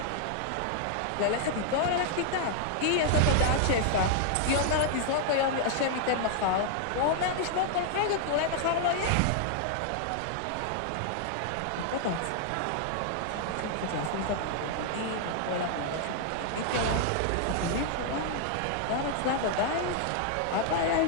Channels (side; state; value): both; different; correlation 0.00